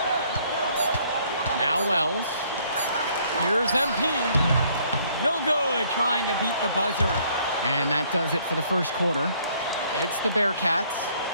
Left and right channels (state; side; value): inverted; both; correlation -0.63